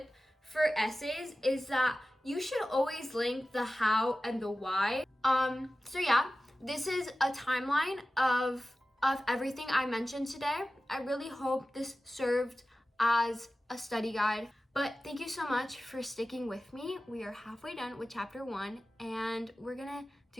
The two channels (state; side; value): normal; both; correlation 0.95